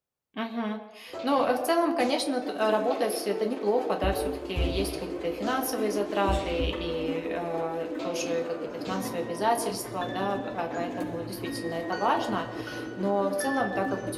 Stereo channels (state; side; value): identical; both; correlation 1.00